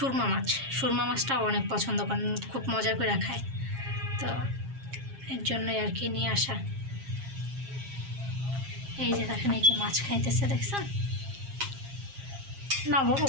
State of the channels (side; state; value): left; late; 7.4 ms